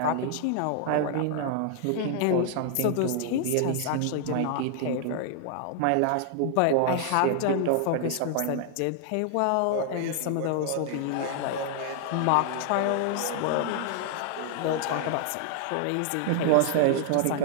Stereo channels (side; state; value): both; different; correlation 0.00